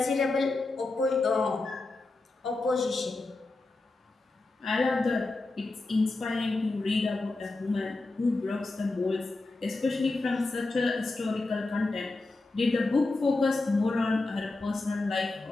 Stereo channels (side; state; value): right; quieter; 3.2 dB